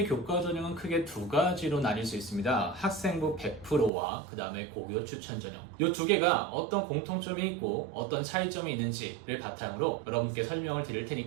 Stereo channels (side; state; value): left; drops out; at 3.9 s